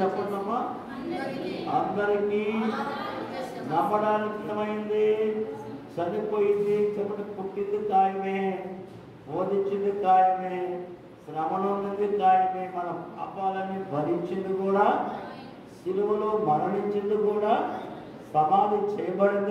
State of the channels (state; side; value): identical; both; correlation 1.00